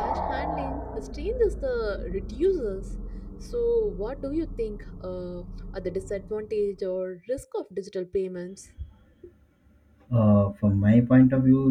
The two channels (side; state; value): both; identical; correlation 1.00